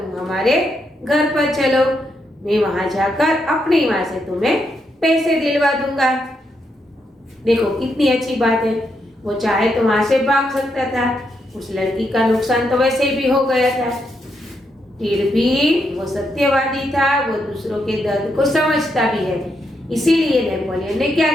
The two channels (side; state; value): both; normal; correlation 0.80